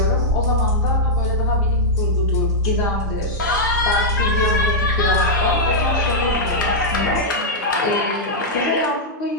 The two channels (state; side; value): normal; both; correlation -0.06